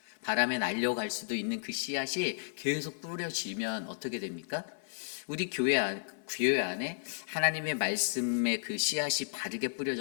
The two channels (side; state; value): right; silent; 56 dB below the other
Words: 바람에 날려갈 수도 있는 그 씨앗이 계속 뿌려지면 어떻게 됩니까? 우리 교회 안에 하나님의 말씀의 그 씨앗이 바르게